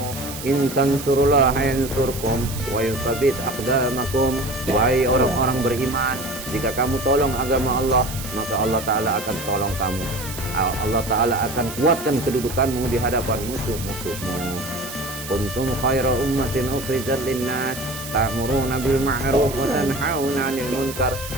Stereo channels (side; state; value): right; noise; hiss, 11 dB below the sound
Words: in tansurullaha yansurkum wa yutsabbit aqdamakum. Wahai orang-orang beriman, jika kamu tolong agama Allah, maka Allah Ta'ala akan tolong kamu. Allah Ta'ala akan kuatkan kedudukanmu di hadapan musuh-musuhmu. Kuntum khaira ummatin ukhrijat linnas ta'muruna bil ma'ruf wa tanhauna 'anil munkar